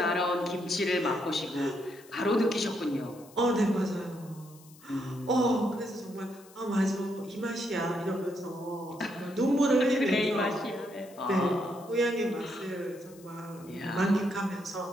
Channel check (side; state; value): left; noise; hiss, 24 dB below the sound